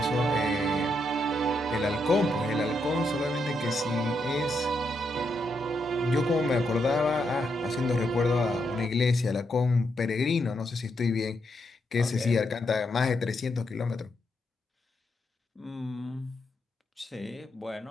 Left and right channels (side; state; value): both; normal; correlation 0.80